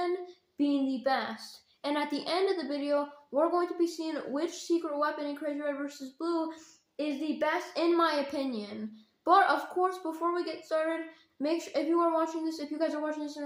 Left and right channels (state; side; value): identical; both; correlation 1.00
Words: being the best. And at the end of the video, we're going to be seeing which secret weapon in Crazy Red vs. Blue is the best in my opinion. But of course, before we get started, make sure if you guys are watching this and